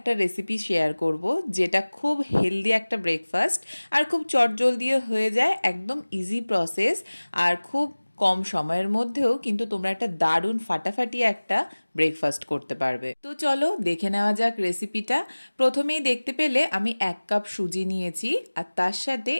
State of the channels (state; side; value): inverted; both; correlation -1.00